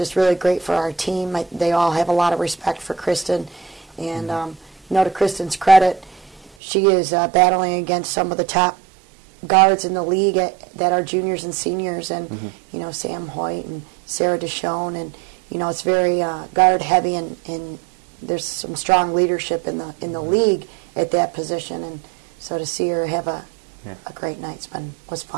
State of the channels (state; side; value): drops out; left; at 6.5 s